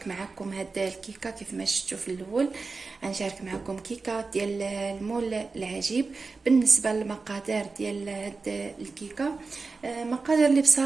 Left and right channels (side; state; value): left; quieter; 4.1 dB